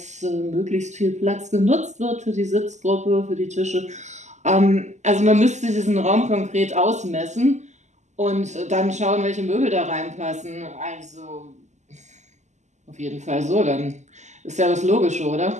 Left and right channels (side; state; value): left; late; 0.34 ms